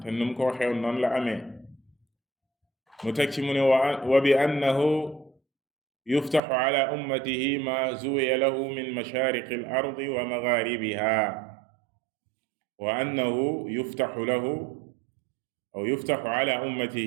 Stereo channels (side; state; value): left; drops out; at 6.4 s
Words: te nu mu ko waxee woon noonu la amee. mu teg ci mu ne wa bi annahu yuftaxu ala ummatihi ma zuwiya lahu min mashaariqi al ardi wa magharibiha. wa annahu yuftaxu ala